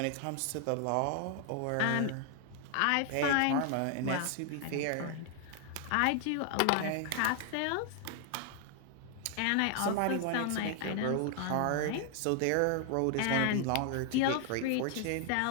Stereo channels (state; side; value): different; both; correlation 0.00